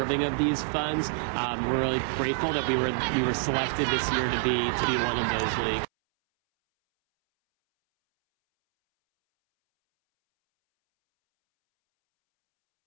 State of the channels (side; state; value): left; silent; 60 dB below the other